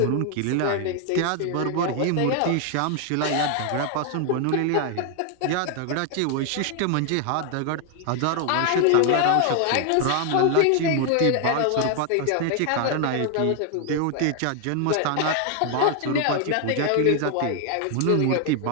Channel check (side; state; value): both; different; correlation 0.00